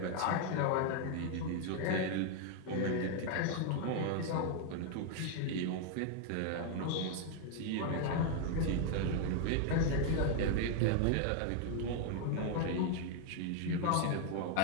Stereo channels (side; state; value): both; different; correlation 0.00